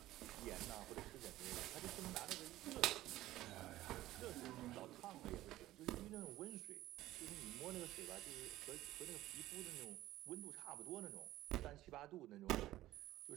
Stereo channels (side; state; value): left; quieter; 15.4 dB